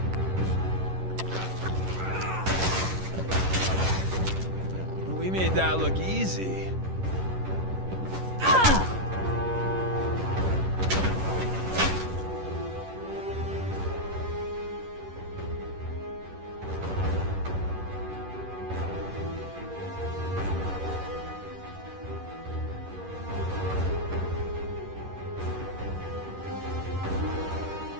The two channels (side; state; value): left; late; 11 ms